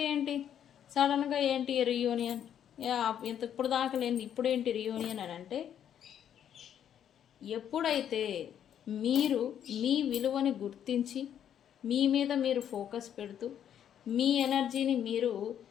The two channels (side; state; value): right; quieter; 9.5 dB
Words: ఏంటి సడన్గా ఏంటి రీయూనియన్, ఇప్పుడు దాకా లేని ఇప్పుడేంటి రీయూనియన్ అని అంటే, ఎప్పుడైతే మీరు మీ విలువని గుర్తించి మీ మీద మీరు ఫోకస్ పెడుతూ మీ ఎనర్జీని మీరు